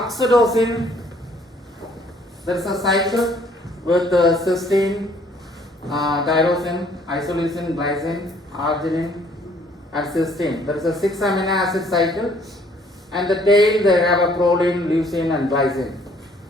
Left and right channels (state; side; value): normal; both; correlation 0.61